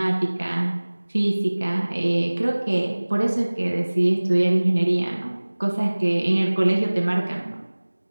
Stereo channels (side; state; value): both; inverted; correlation -1.00